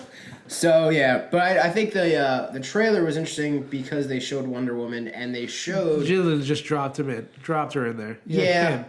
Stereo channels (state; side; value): identical; both; correlation 1.00